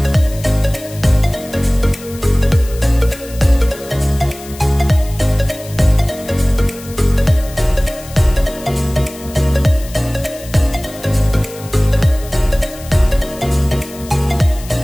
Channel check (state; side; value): noise; left; hiss, 18 dB below the sound